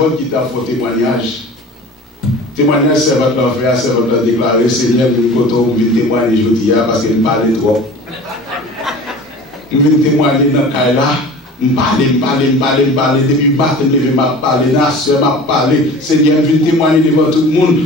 qui t'a fait témoignage. Témoignage, servante l'a fait, servante l'a déclaré, Seigneur, nous comptons témoigner aujourd'hui parce qu'il me parlait trop. Nous venons témoigner dans le cas là. Me parler, depuis le matin, je vais parler, la soeur m'a parlé. Seigneur, je viens témoigner devant tout le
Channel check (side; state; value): both; normal; correlation 0.40